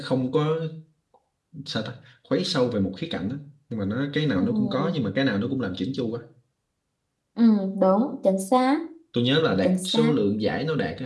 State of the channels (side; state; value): both; identical; correlation 1.00